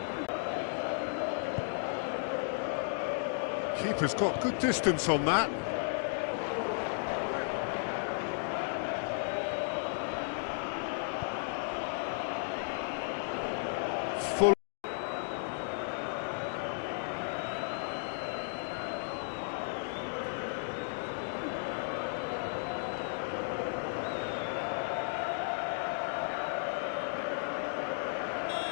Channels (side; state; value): right; silent; digital silence